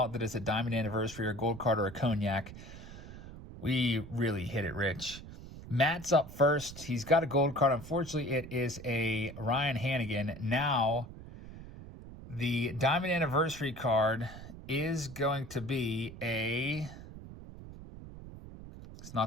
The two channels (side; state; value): right; noise; rumble, 14 dB below the sound